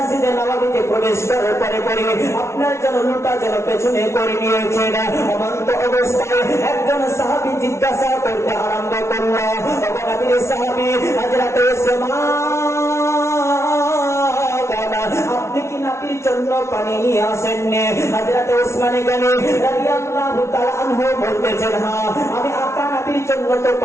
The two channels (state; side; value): late; right; 0.13 ms